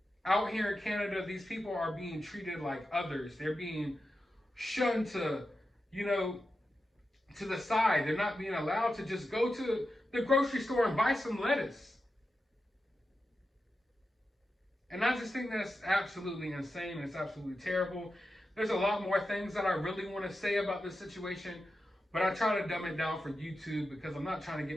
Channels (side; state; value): both; normal; correlation 0.90